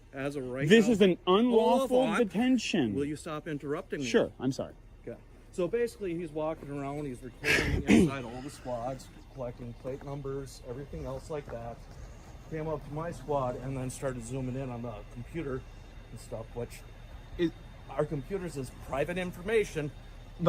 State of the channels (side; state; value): both; identical; correlation 1.00